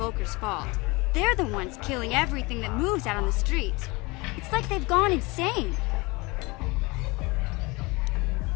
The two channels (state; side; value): quieter; right; 25.0 dB